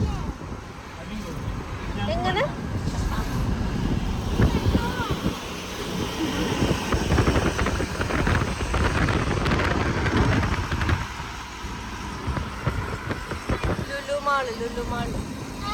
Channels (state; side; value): identical; both; correlation 1.00